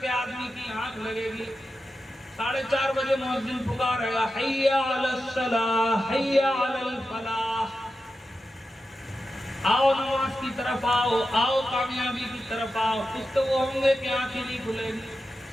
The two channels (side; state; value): both; normal; correlation 0.91